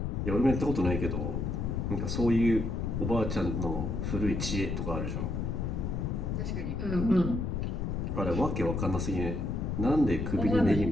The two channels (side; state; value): left; noise; rumble, 1 dB below the sound